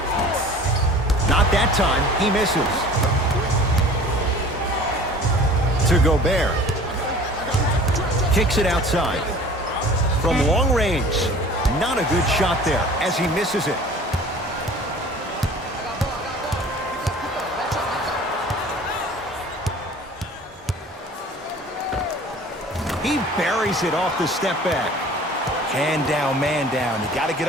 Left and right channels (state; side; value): normal; both; correlation 0.45